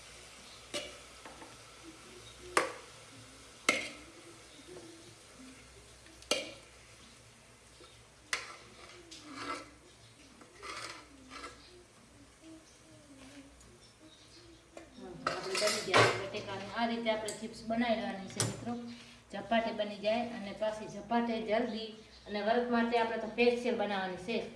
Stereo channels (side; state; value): both; identical; correlation 1.00